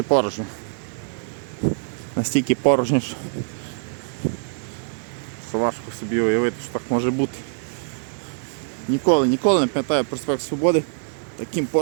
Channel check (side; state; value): left; silent; 63 dB below the other